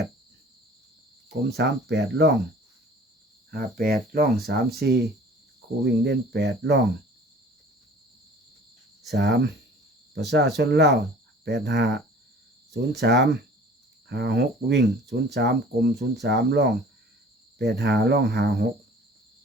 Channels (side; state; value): both; normal; correlation 0.48